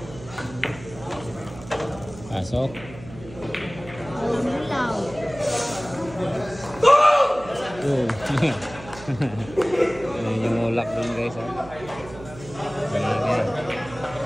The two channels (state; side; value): noise; right; hum, 16 dB below the sound